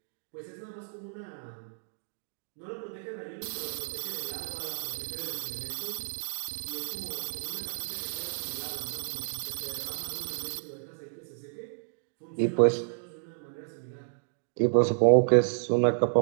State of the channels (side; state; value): left; silent; digital silence